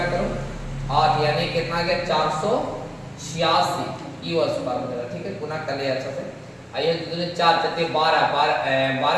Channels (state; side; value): identical; both; correlation 1.00